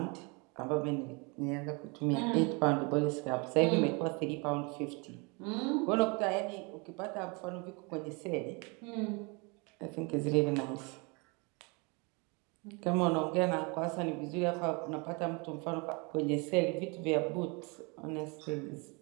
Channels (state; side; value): quieter; left; 30.3 dB